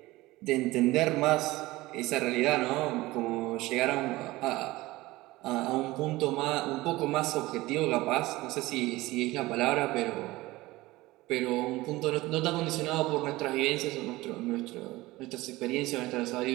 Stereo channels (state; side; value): quieter; left; 19.3 dB